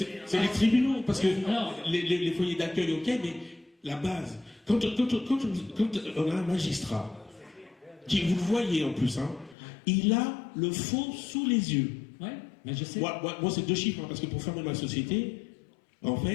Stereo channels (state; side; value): drops out; right; at 9.6 s